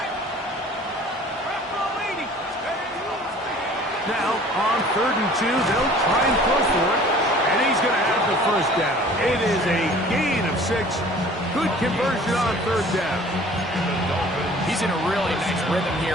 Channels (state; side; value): normal; both; correlation 0.49